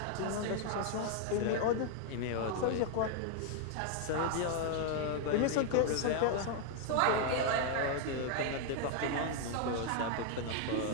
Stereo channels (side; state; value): both; different; correlation 0.00